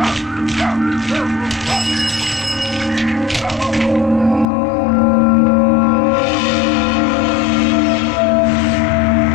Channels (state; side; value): drops out; right; at 4.5 s